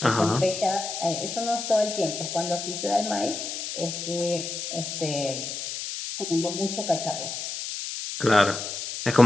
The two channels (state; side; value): noise; left; hiss, 6 dB below the sound